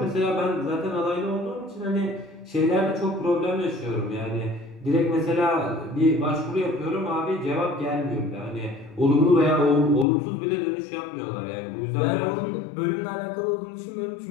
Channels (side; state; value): right; drops out; at 10.1 s